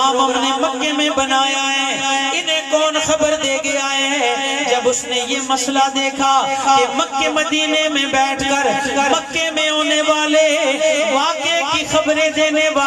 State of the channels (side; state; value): both; identical; correlation 1.00